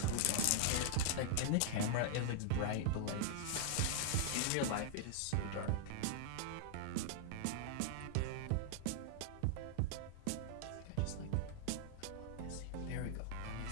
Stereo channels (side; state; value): both; different; correlation -0.01